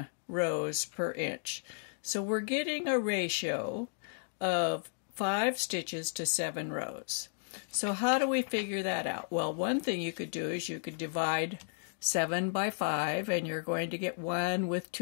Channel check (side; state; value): right; silent; digital silence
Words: rows per inch. So we're getting a ratio of 5 stitches to 7 rows. So how do we figure that out? Well, one thing you could do is you could divide 7 by 5, and you're going to get 1 with